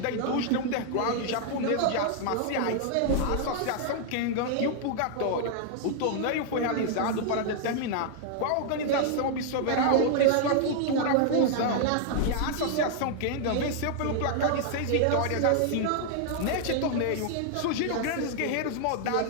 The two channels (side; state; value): both; different; correlation 0.00